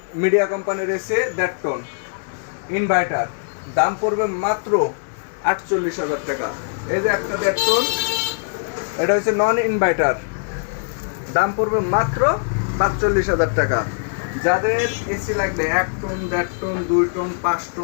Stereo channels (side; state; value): right; silent; 65 dB below the other